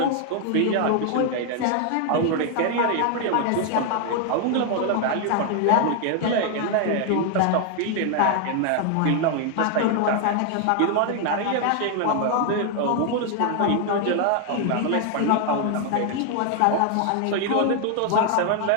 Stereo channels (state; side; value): different; both; correlation 0.00